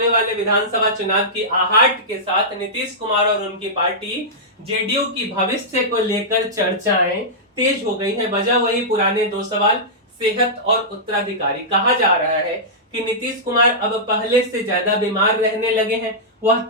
वाले विधानसभा चुनाव की आहट के साथ नीतीश कुमार और उनकी पार्टी जेडीयू की भविष्य को लेकर चर्चाएं तेज हो गई हैं। वजह वही पुराने 2 सवाल, सेहत और उत्तराधिकारी। कहा जा रहा है कि नीतीश कुमार अब पहले से ज्यादा बीमार रहने लगे हैं, वह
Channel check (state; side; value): normal; both; correlation -0.13